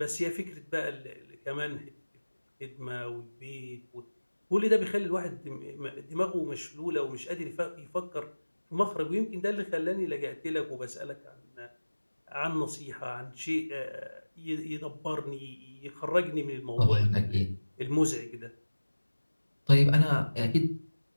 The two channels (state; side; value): inverted; both; correlation -1.00